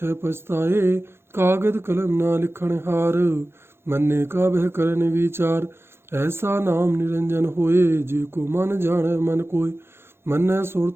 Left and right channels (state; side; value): late; left; 0.12 ms